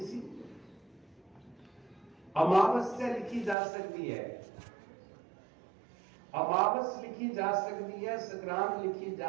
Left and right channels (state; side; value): drops out; left; at 3.6 s